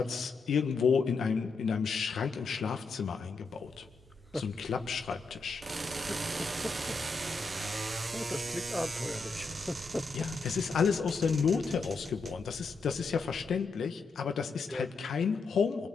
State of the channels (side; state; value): right; quieter; 4.2 dB